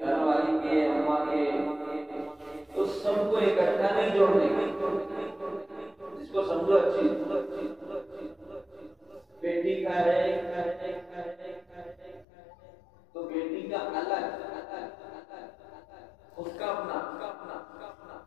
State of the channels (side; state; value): right; drops out; at 12.2 s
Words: والی کے، اماں کے، تو سب کو اکٹھا نہیں جوڑنے کی، جس کو سمجھو اچھی بیٹی کا ہے تو بیٹی کا الگ، اس کا اپنا،